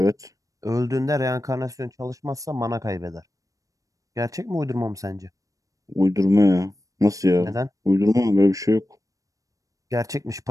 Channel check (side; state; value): left; late; 0.16 ms